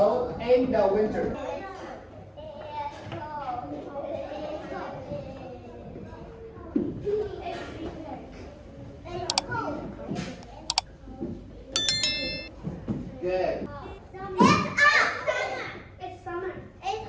in the winter. Good. It's summer. It's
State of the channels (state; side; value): identical; both; correlation 1.00